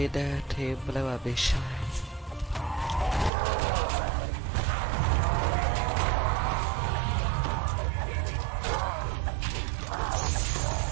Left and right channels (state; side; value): drops out; left; at 3.3 s